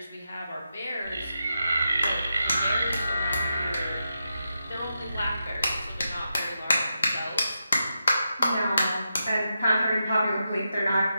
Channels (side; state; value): both; inverted; correlation -0.86